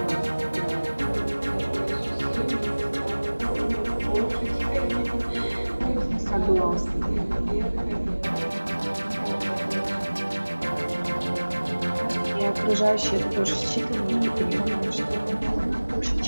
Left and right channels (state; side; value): inverted; both; correlation -1.00